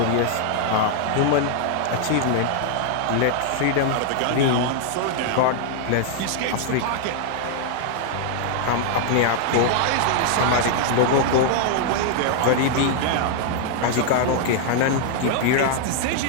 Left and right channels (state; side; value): different; both; correlation 0.00